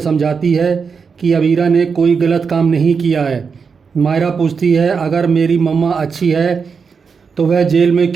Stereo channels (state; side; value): quieter; left; 5.6 dB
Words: है कि अबीरा ने कोई गलत काम नहीं किया है। मायरा पूछती है अगर मेरी मम्मा अच्छी है तो वह जेल में